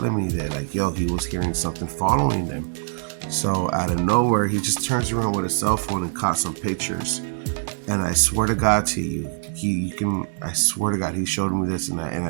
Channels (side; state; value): left; silent; digital silence